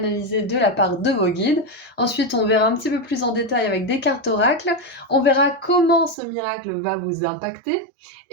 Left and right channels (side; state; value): left; drops out; at 6.2 s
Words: de la part de vos guides. Ensuite on verra un petit peu plus en détail avec des cartes oracles. On verra comment ce miracle va vous impacter.